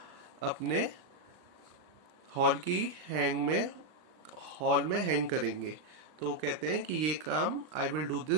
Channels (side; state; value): left; late; 39 ms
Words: अपने हॉल में हैंग करेंगे. तो वो कहते हैं कि ये काम I will do